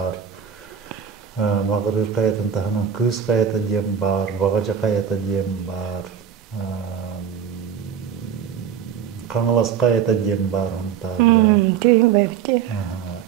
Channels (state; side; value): quieter; left; 8.2 dB